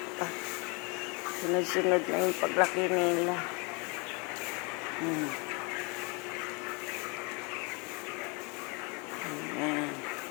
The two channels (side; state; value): right; quieter; 30.9 dB